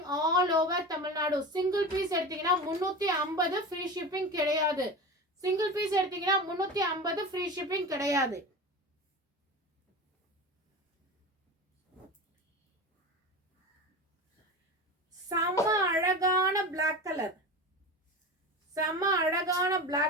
all over Tamil Nadu. Single piece எடுத்தீங்கன்னா 350 ஃப்ரீ ஷிப்பிங் கிடையாது. சிங்கிள் பீஸ் எடுத்தீங்கன்னா 350 ஃப்ரீ ஷிப்பிங் கிடையாது. செம்ம அழகான பிளாக் கலர். செம்ம அழகான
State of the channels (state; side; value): normal; both; correlation 0.29